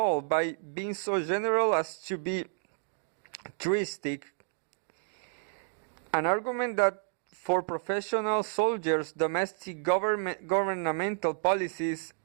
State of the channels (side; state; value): left; silent; digital silence